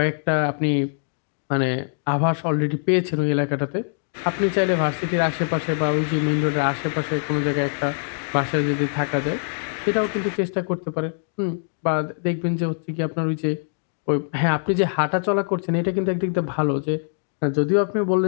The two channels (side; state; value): right; silent; digital silence